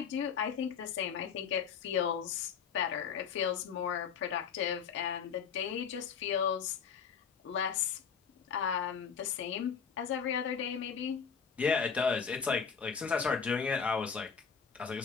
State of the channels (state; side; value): quieter; right; 6.7 dB